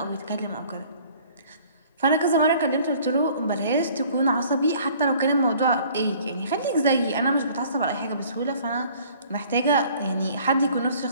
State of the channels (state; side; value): inverted; both; correlation -0.53